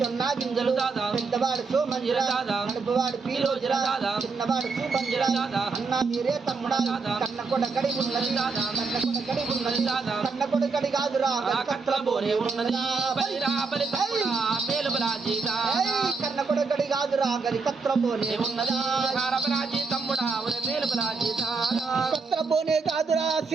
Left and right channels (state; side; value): quieter; left; 4.5 dB